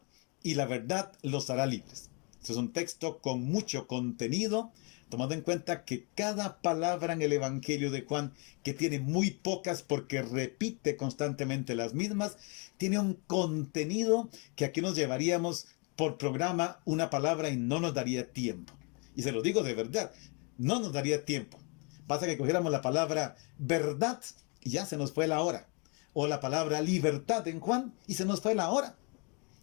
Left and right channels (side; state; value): right; quieter; 33.6 dB